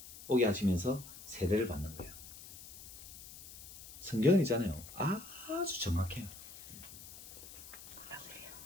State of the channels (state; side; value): noise; left; hiss, 15 dB below the sound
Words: 오게 하시면서 세례를 받는 거예요. 성경은 있잖아요. 아주 정확해요.